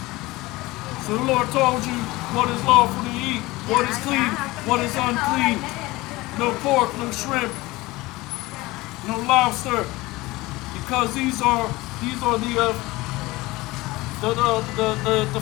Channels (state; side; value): quieter; right; 20.5 dB